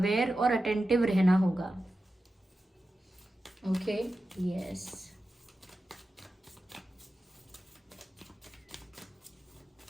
और अटेंटिव रहना होगा। Okay, yes.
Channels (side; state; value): both; normal; correlation 0.92